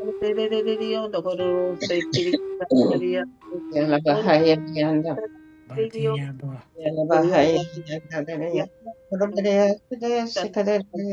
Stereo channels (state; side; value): identical; both; correlation 1.00